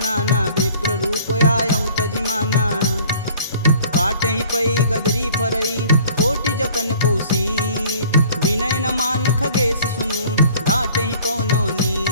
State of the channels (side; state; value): both; inverted; correlation -0.51